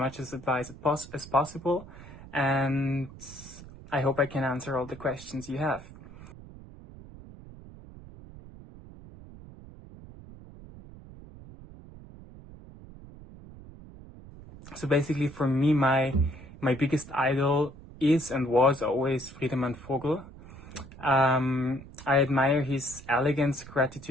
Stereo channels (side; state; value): right; noise; rumble, 17 dB below the sound